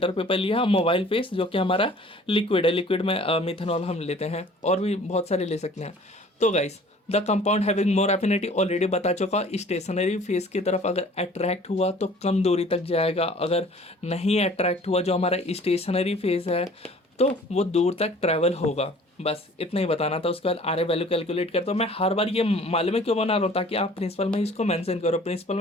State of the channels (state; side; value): normal; both; correlation 0.50